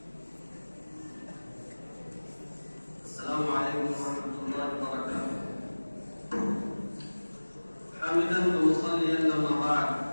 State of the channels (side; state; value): both; inverted; correlation -1.00